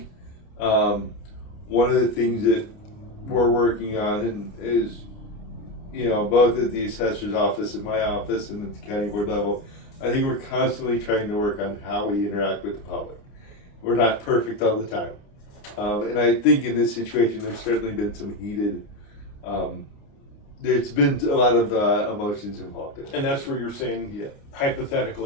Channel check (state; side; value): late; right; 29 ms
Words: one of the things that we're working on is, both at the assessor's office, at my office, and at the county board level, I think we're constantly trying to work on how we interact with the public. We're not perfect all the time. And I think in this situation, there's certainly been some heated, there's been a lot of emotions involved in it. And that's where you're saying,